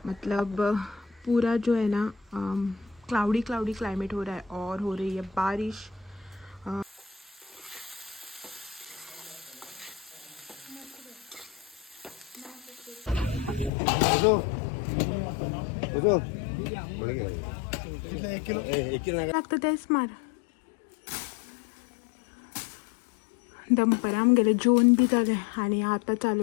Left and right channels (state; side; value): drops out; right; at 13.7 s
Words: मतलब पूरा जो है ना क्लाउडी क्लाउडी क्लाइमेट हो रहा है और हो रही है बारिश। लागतं तेच मार दंपराम गेले, जेवण भी झाले आणि आता